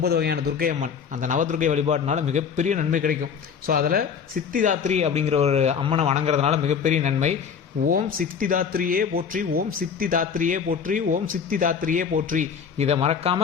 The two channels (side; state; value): right; quieter; 6.7 dB